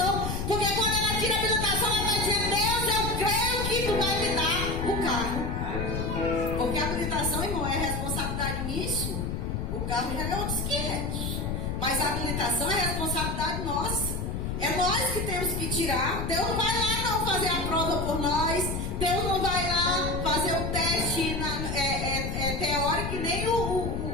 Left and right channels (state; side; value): noise; left; rumble, 2 dB below the sound